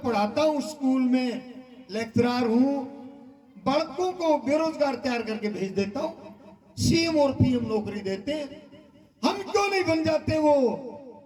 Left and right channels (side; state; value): both; identical; correlation 1.00